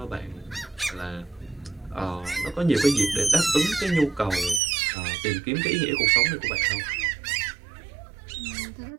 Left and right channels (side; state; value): left; drops out; at 4.6 s